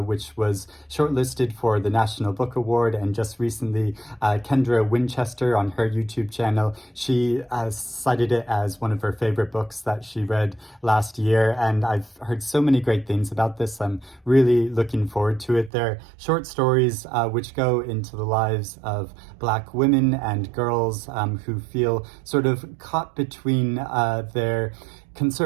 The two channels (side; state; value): left; drops out; at 15.7 s